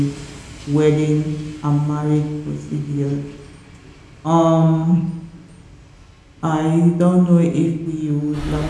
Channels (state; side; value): identical; both; correlation 1.00